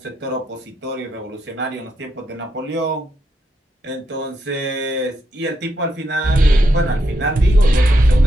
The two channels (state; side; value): normal; both; correlation 0.81